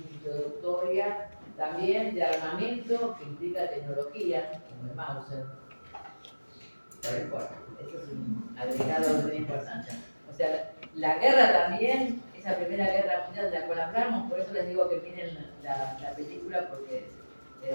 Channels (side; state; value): both; inverted; correlation -1.00